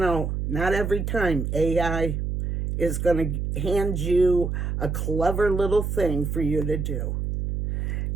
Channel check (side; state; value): right; noise; hum, 2 dB below the sound